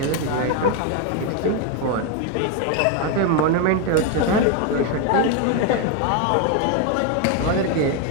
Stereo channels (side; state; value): both; different; correlation 0.02